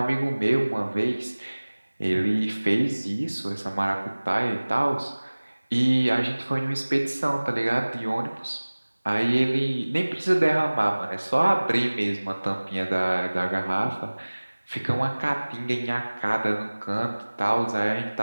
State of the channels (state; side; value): inverted; both; correlation -1.00